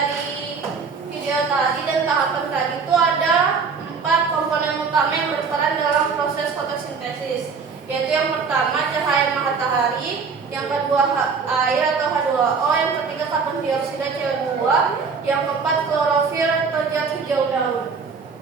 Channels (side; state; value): left; quieter; 5.3 dB